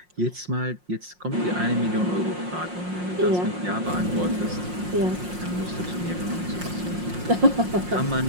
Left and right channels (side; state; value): left; late; 5.6 ms